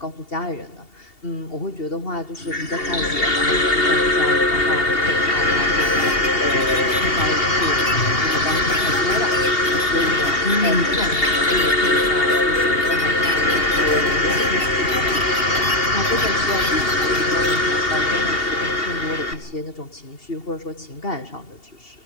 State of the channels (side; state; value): right; late; 2.7 ms